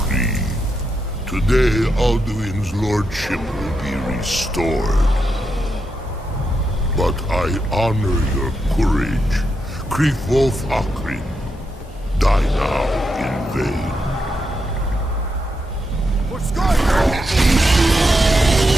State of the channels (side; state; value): both; normal; correlation 0.84